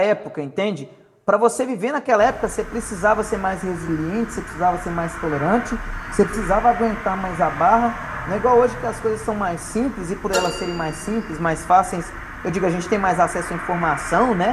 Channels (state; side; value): identical; both; correlation 1.00